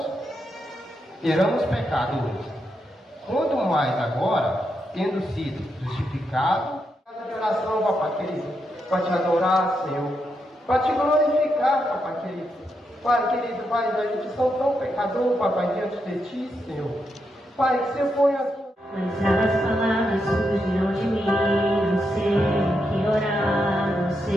éramos pecadores. Quanto mais agora, tendo sido justificado, de oração, papai querido, para te adorar, Senhor, para te glorificar, papai querido. Pai querido, Pai, a gente são tão pecador, papai, diante de ti, Senhor. Pai, que você põe a tua... Mas as palavras surgiram de mim, não sei o que orar, não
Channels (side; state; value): both; normal; correlation 0.83